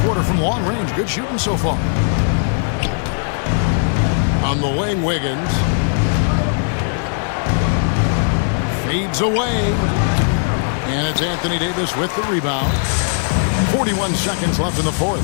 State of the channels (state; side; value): silent; right; digital silence